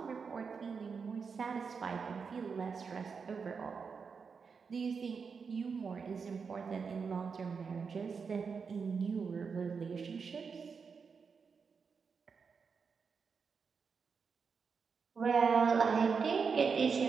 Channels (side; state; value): left; quieter; 5.6 dB